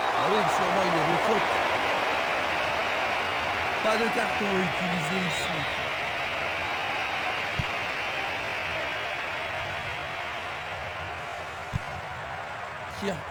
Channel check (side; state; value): both; identical; correlation 1.00